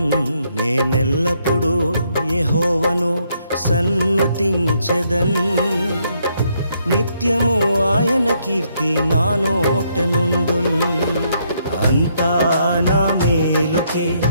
నేనెల్లప్పుడూ యెహోవాను సన్నుతించెదన్, నిత్యము ఆయన కీర్తి నా నోట నుండున్. అంతా నా మేలుకే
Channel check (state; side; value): inverted; both; correlation -0.73